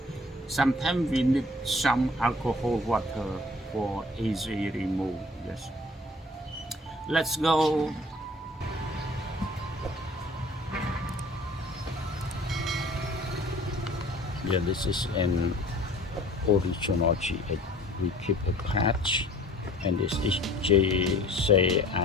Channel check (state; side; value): normal; both; correlation 0.51